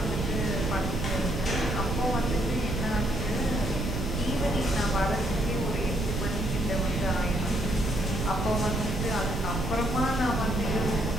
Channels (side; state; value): right; noise; rumble, 2 dB below the sound